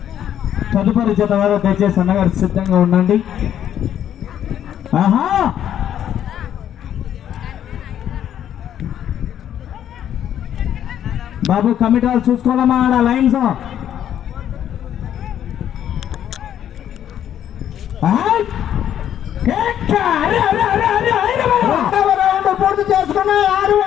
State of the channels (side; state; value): right; quieter; 10.3 dB